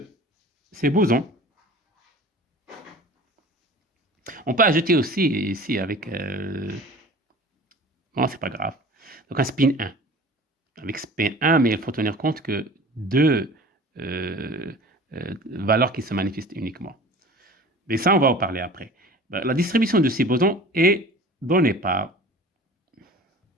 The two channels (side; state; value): both; normal; correlation 0.42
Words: ces bosons, on peut ajouter aussi ici avec, non, c'est pas grave, donc un spin 1. Avec spin 1, mais il faut tenir compte que deux valeurs qui se manifestent uniquement. Mais ça, on va en parler après. La distribution de ces bosons est donnée par